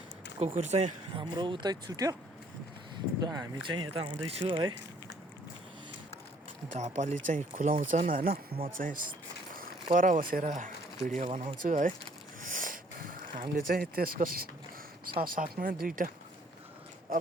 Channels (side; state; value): both; normal; correlation 0.62